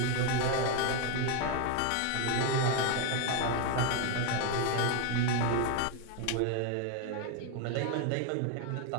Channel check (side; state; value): both; different; correlation 0.01